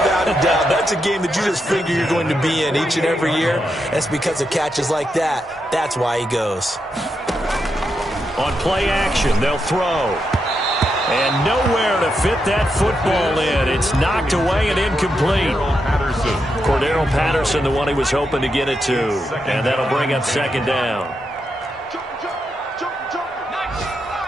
a doubt. That's a game that you just figure you're going to be in each and every year. That's because of catches like that. That's why he goes. On play action, they'll throw. And nowhere to fit that football in. It's knocked away and incomplete. Cordero Patterson, the one he was hoping to get it to. And that'll bring up 2nd down.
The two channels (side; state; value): both; normal; correlation 0.84